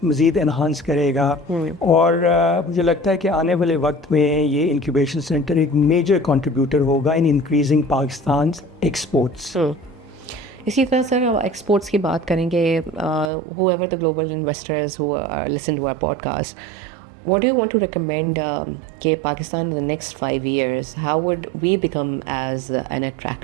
مزید انہانس کرے گا. اور مجھے لگتا ہے کہ آنے والے وقت میں یہ انکیوبیشن سینٹر ایک میجر کنٹریبیوٹر ہوگا ان انکریزنگ پاکستان ایکسپورٹس. اسی طرح سر ایکسپورٹس کی بات کریں گے, whoever the global investors who are listen to our podcast, what do you want to recommend کہ Pakistan in the next 5 years, how would we become as an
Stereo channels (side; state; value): left; drops out; at 13.3 s